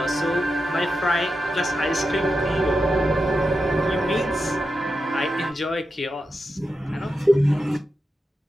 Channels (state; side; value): normal; both; correlation 0.89